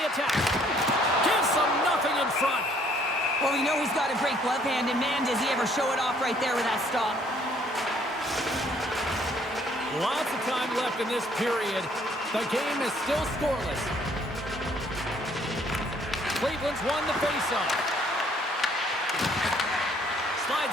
attack. Gives them nothing in front. Well, we know he's got a great glove hand, and man, does he ever show it off right there with that stop. Lots of time left in this period. The game is still scoreless. Cleveland's won the faceoff.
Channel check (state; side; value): normal; both; correlation 0.63